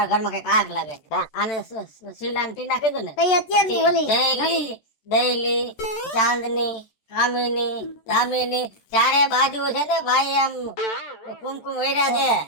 ઘરમાં કઈક આગ લાગે. આને શીલા ને ટીના કીધું ને, કઈ અત્યારની ઓલી જયલી, દયલી, ચાંદની, કામિની, દામિની, ચારે બાજુ છે ને ભાઈ આમ કુમકુમ વેર્યા છે.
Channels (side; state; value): right; late; 14 ms